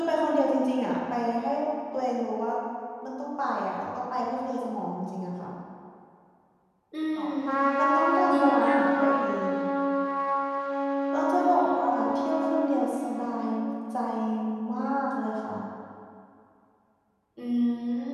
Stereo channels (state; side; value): identical; both; correlation 1.00